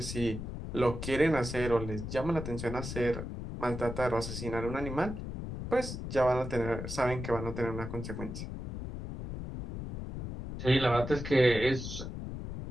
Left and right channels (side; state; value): left; noise; rumble, 7 dB below the sound